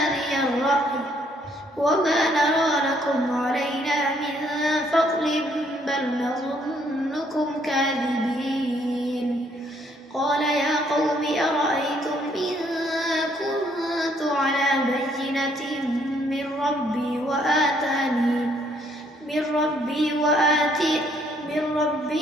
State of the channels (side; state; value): both; normal; correlation 0.67